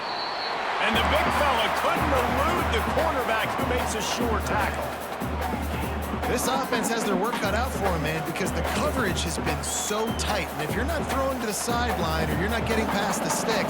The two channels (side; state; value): both; identical; correlation 1.00